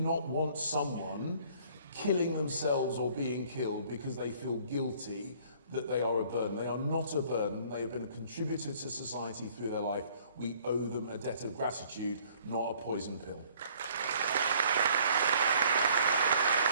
want someone killing themselves or being killed because they feel guilty that they are a burden. They are not a burden. They have been a contributor to society through their life. We owe them a debt of gratitude, not a poison pill.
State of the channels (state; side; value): inverted; both; correlation -0.58